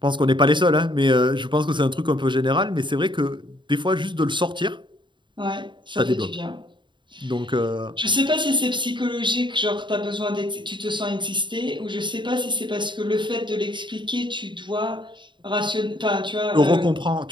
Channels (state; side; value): late; left; 0.23 ms